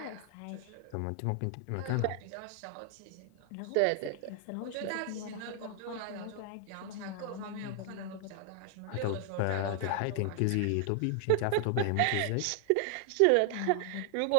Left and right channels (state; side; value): different; both; correlation 0.00